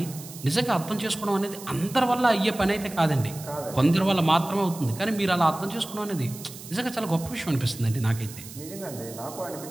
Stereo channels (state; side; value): noise; right; hiss, 15 dB below the sound